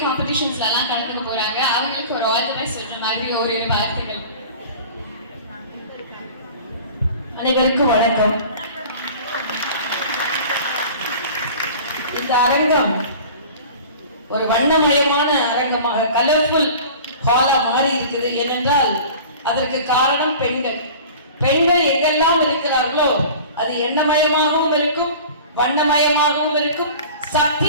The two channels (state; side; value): inverted; both; correlation -0.41